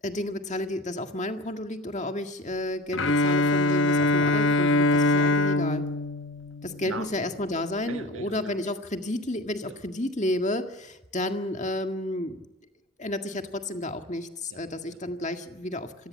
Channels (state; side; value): normal; both; correlation 0.34